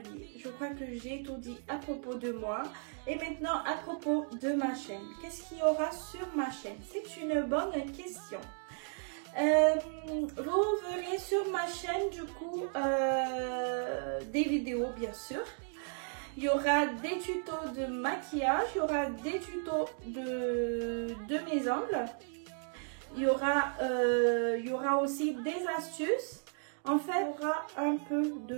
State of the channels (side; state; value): left; silent; 55 dB below the other